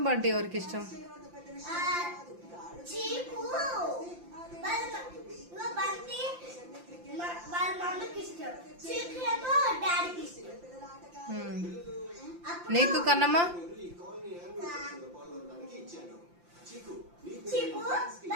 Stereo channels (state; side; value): late; left; 5.8 ms